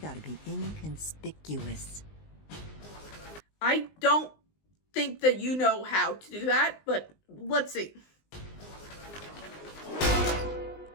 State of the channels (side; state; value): right; late; 19 ms